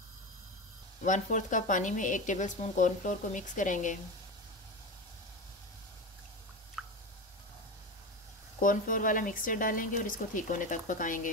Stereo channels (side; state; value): both; normal; correlation 0.22